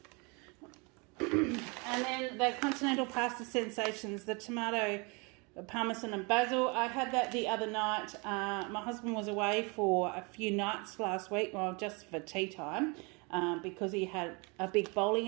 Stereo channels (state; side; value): quieter; left; 30.2 dB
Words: And then the Continental Pasta Sensations, the tomato, parmesan and basil. I had that the other night. My husband was away for a few nights last week, well, just for tea time, because he had a big bowling